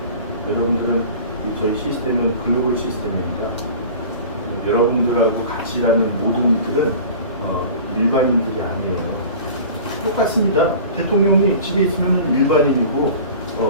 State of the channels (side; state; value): both; inverted; correlation -0.40